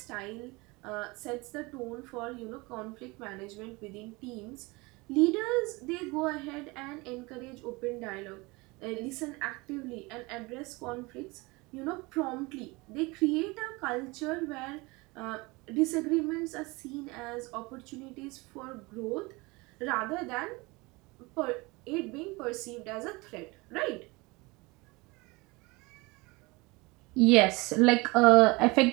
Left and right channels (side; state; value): left; quieter; 24.6 dB